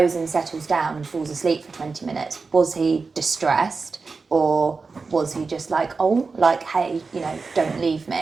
and settles down and falls asleep for 20 minutes, was he distressed, or was he just like, oh, like, hey, you know, don't leave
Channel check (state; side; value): quieter; left; 4.4 dB